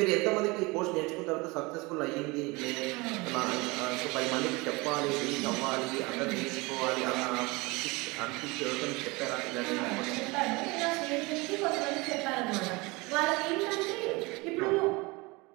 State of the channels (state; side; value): quieter; left; 24.9 dB